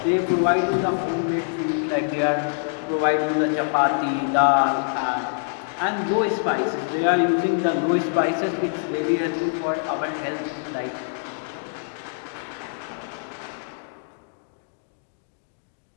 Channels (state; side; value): silent; right; 62 dB below the other